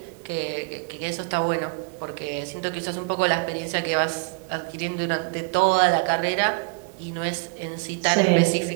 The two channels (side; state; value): left; quieter; 35.7 dB